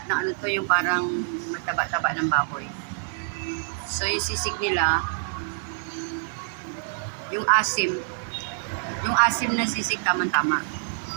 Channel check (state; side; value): silent; left; digital silence